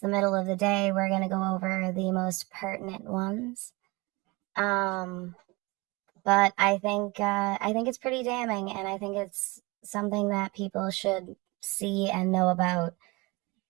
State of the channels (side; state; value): left; quieter; 24.9 dB